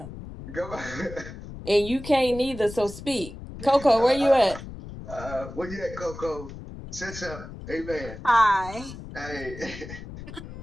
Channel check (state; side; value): noise; left; rumble, 12 dB below the sound